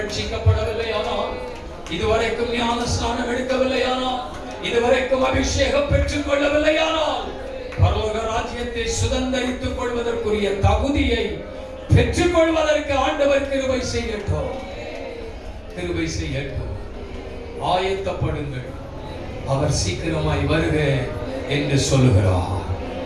இதுவரைக்கும் ஞானஸ்நானம் எடுக்கவில்லையானால், இதுவரைக்கும் அபிஷேகம் பெற்றுக் கொள்ளவில்லையானால், பரலோக ராஜ்யத்தை சுதந்திரித்துக் கொள்வதற்குரிய தகுதியை பெற்றுக் கொள்வதற்கு ஆண்டவர் கிருபை செய்யட்டும், கிருபை செய்யட்டும். ஆயத்தப்படுங்கள், அவர் சீக்கிரமாய் வருக என்று சொல்லுகிறார்.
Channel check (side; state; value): both; identical; correlation 1.00